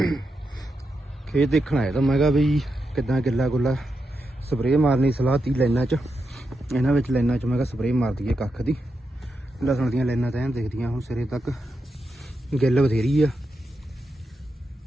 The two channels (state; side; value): normal; both; correlation 0.86